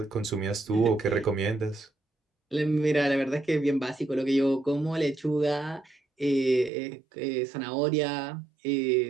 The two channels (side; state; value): left; drops out; at 6.7 s